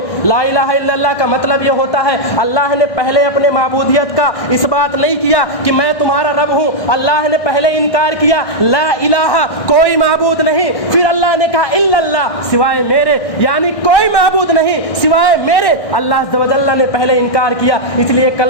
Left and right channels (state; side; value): late; right; 1.6 ms